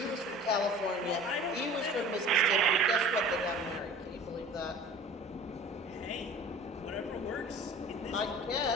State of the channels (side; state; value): both; normal; correlation 0.42